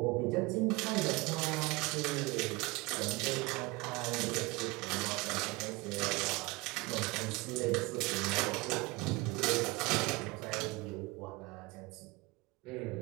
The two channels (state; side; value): quieter; left; 23.4 dB